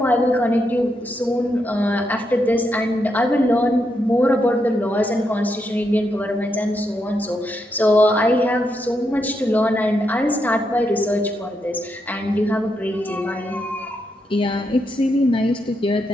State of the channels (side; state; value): both; normal; correlation 0.81